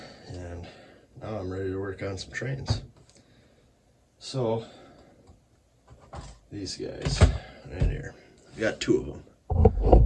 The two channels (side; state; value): both; identical; correlation 1.00